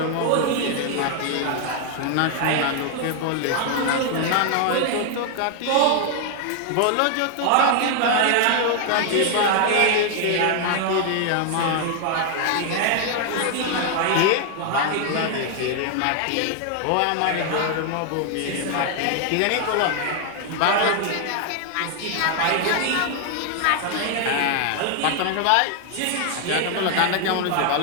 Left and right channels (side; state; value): both; different; correlation 0.00